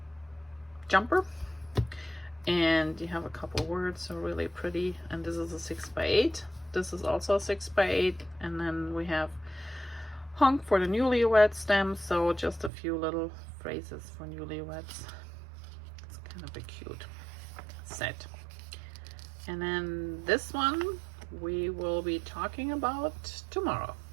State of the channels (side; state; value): left; drops out; at 12.7 s